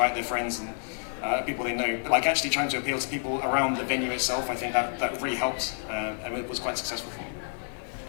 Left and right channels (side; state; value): right; silent; digital silence